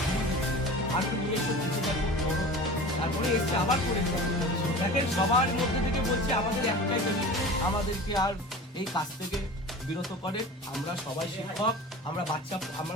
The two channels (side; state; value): both; normal; correlation 0.36